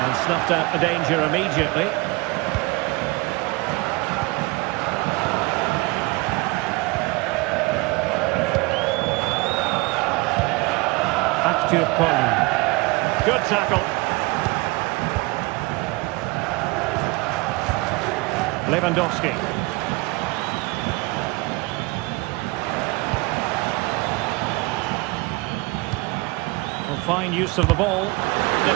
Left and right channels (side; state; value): left; quieter; 24.5 dB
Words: And snuffed out the danger immediately. Back to Poli. Good tackle. Lewandowski. Well, fine use of the ball.